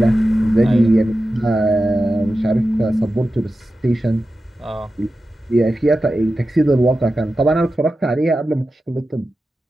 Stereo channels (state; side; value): normal; both; correlation 0.92